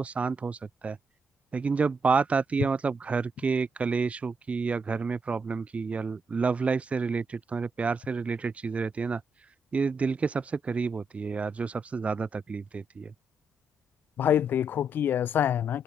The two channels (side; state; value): both; normal; correlation 0.79